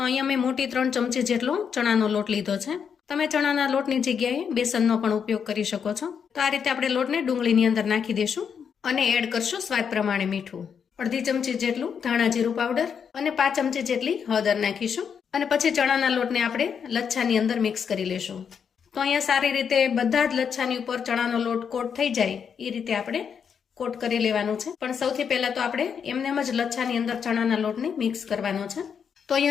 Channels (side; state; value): right; quieter; 7.1 dB